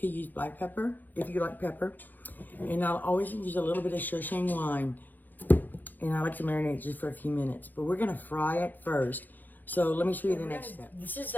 use black pepper if you like pepper. And I'll always use a little bit of Shoshang wine. And I like to marinate just for a few minutes. But we're gonna fry it first. So let me show you the next step. This is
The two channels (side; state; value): right; late; 0.086 ms